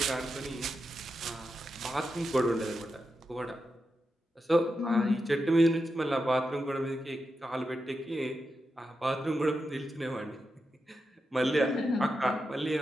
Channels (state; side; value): normal; both; correlation 0.88